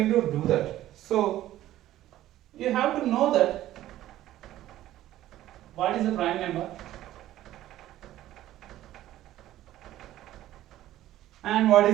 to do that. So you have to know that what is the prime number and what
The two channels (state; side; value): quieter; left; 13.9 dB